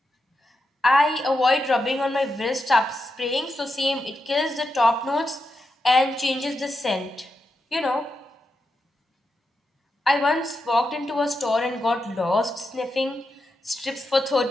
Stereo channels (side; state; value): both; normal; correlation 0.86